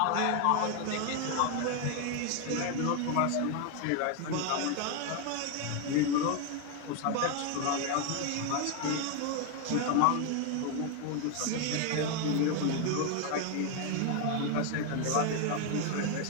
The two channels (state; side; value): different; both; correlation 0.01